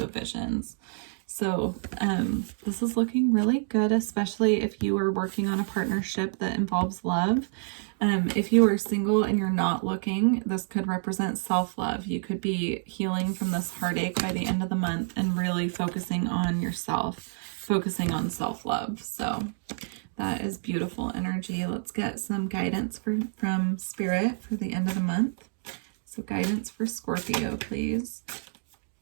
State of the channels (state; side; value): silent; left; digital silence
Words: Visions. So this is looking really good, especially if you are working on a partnership that involves love. If you are single and you're not looking, this could represent self-love. You could be healing from this heartache by the end of the month and really focusing on yourself, focusing on self-love. So that is beautiful energy. Let's get some guidance from Spirit for the end of the month. So guidance for Scorpio, please.